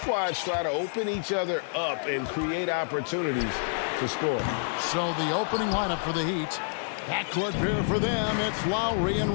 try to open each other up and create opportunities to score. So the opening lineup for the Heat. Backcourt pair for them, it's Lowry and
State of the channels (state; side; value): silent; right; digital silence